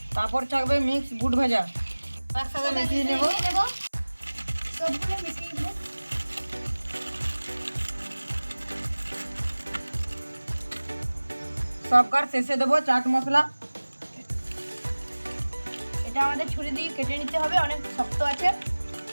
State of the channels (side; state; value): both; inverted; correlation -1.00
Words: তারপর থাকবে মিক্স বুট ভাজা। একসাথে মিশিয়ে নেব। সবগুলো মিশিয়ে দেব। সবকার শেষে দেবো চাট মশলা। এটা আমাদের ছুরি দিয়ে কেটে নিতে হবে, অনেক শক্ত আছে।